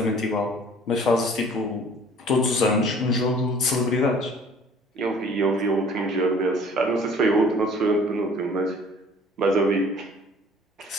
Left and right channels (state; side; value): normal; both; correlation 0.52